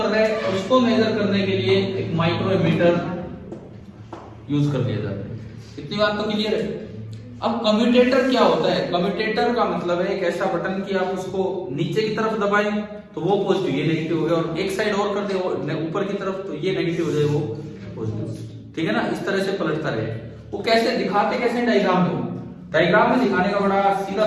रहा है उसको मेजर करने के लिए एक माइक्रोमीटर यूज कर दिया जाता है। इतनी बात तो क्लियर है। अब कम्यूटेटर क्या होता है? कम्यूटेटर का मतलब है एक ऐसा बटन कि आप उसको नीचे की तरफ दबाएं तो वो पॉजिटिव, ये नेगेटिव हो गया, और एक साइड और कर दे ऊपर की तरफ तो ये नेगेटिव हो जाए, वो पॉजिटिव, ठीक है ना। इस तरह से पलटता रहे। वो कैसे दिखाते, कैसे डायग्राम में? डायग्राम में दिखाने का बड़ा सीधा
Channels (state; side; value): identical; both; correlation 1.00